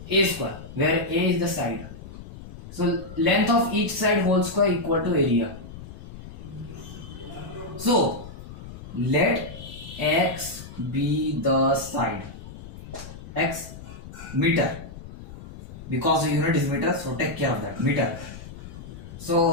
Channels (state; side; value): noise; left; rumble, 14 dB below the sound